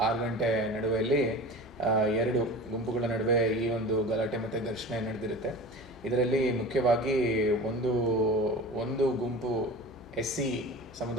6 ಗಂಟೆ ನಡುವೆಯಲ್ಲಿ ಎರಡು ಗುಂಪುಗಳ ನಡುವೆ ಈ ಒಂದು ಗಲಾಟೆ ಮತ್ತು ಘರ್ಷಣೆ ನಡೆದಿರುತ್ತೆ. ಇದರಲ್ಲಿ ಮುಖ್ಯವಾಗಿ ಒಂದು ಗುಂಪು SC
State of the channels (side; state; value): left; noise; hum, 24 dB below the sound